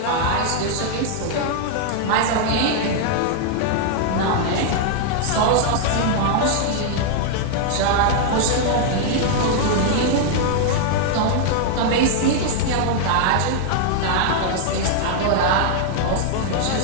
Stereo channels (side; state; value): both; different; correlation 0.00